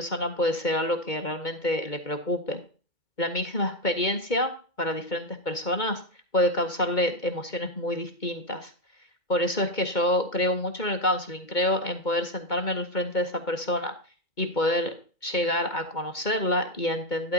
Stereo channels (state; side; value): late; right; 2.2 ms